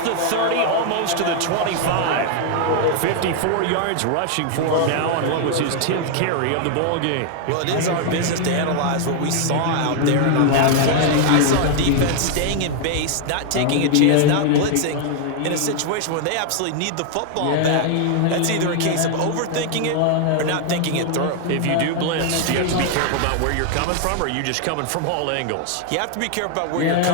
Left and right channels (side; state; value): both; different; correlation 0.00